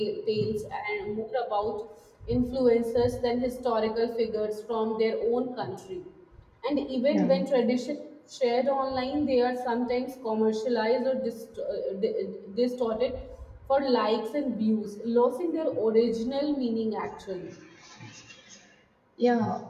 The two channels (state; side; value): identical; both; correlation 1.00